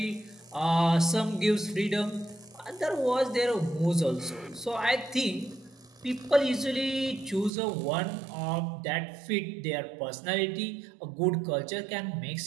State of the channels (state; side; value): drops out; left; at 7.5 s